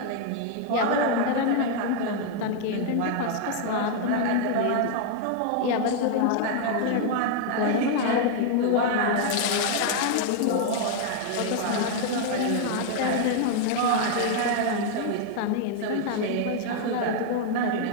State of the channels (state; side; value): different; both; correlation 0.00